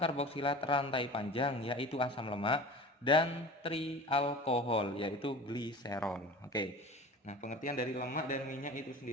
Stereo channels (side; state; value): both; normal; correlation 0.38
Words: rantai panjang yaitu asam lemak dan trialkohol yaitu gliserol. Oke. Nah, pengertian dari lemak dan minyak itu